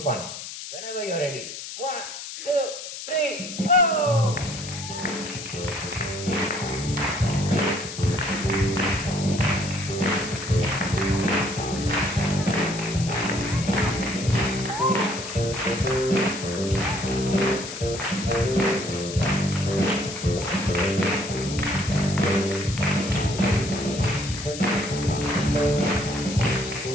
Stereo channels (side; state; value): left; noise; hiss, 9 dB below the sound